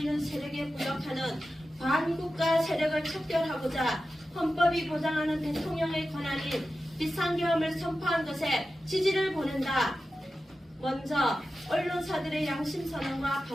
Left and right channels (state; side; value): normal; both; correlation 0.93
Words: 세력에 부역하는 반국가 세력을 척결하고자 헌법이 보장하는 대통령의 권한인 비상계엄을 선포한 것에 지지를 보낸다. 먼저 언론사들의 양심선언과